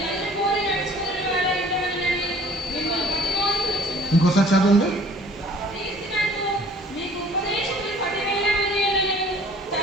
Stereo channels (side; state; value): both; normal; correlation 0.51